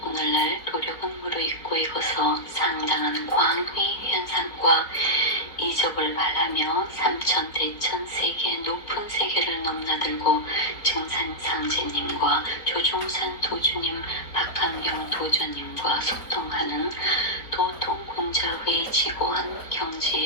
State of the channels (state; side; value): late; right; 4.3 ms